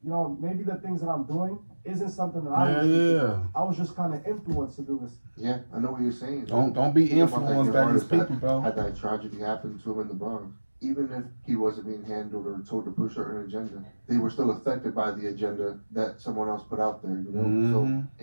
Maybe the things that I'm doing isn't something that I was just kind of influenced to do this. Yeah, I know what you're saying. Don't be influenced by these people, bro. Had that tragedy happen to him in the Bronx. Even if he wasn't being handled or told to push a certain agenda, they were still affected by the agenda that someone else put out there, So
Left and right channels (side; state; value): both; inverted; correlation -1.00